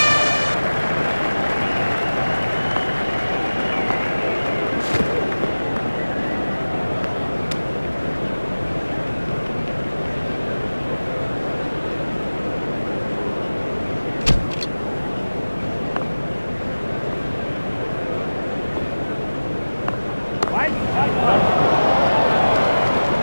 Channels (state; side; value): inverted; both; correlation -1.00